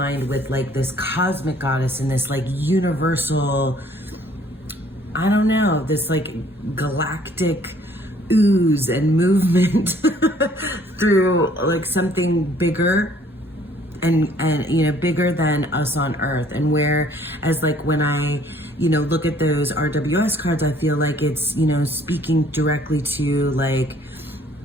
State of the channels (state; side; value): normal; both; correlation 0.59